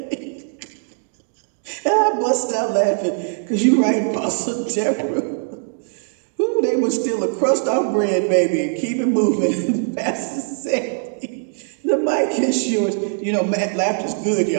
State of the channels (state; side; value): silent; left; digital silence